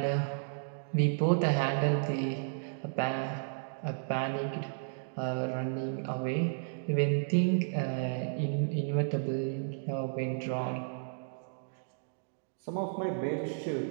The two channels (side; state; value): left; silent; digital silence